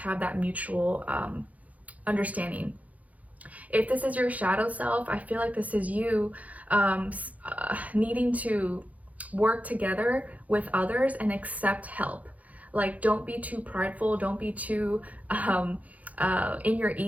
that mutual understanding. If this is your shadow self, I feel like this is you needing to work together with others and accept help. Like, don't be too prideful, don't be too in your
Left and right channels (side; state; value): left; late; 0.072 ms